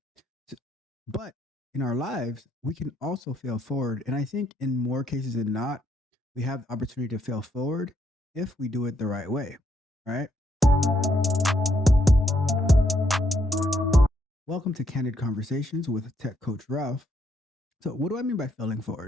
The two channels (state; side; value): normal; both; correlation 0.74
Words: S- But in our lives, we can also fail forward. And I think in more cases than not, we have the opportunity to fail forward if we do it the right way, right? Welcome to Candid Conversations with Tech Coach Ralph. So, what do I mean by failing